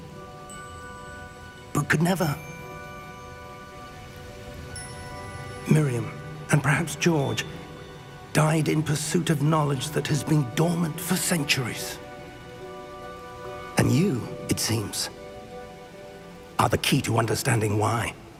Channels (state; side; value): identical; both; correlation 1.00